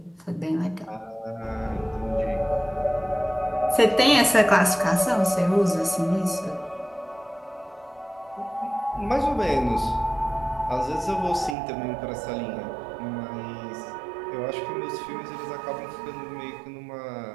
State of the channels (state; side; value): drops out; left; at 11.6 s